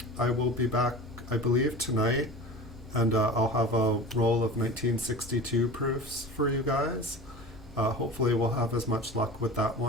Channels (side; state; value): both; normal; correlation 0.35